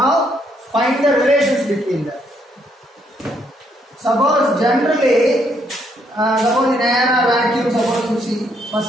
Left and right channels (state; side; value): normal; both; correlation 0.72